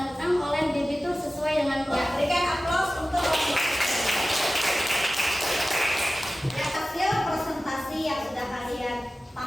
utang oleh debitur sesuai dengan Ya, berikan aplaus untuk hasil presentasi yang sudah kalian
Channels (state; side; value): normal; both; correlation 0.96